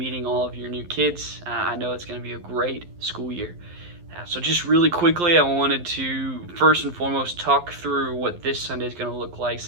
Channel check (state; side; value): late; left; 11 ms